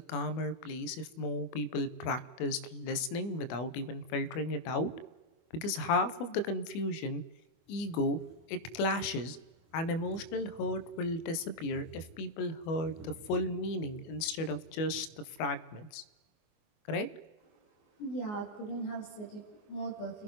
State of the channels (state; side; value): late; right; 25 ms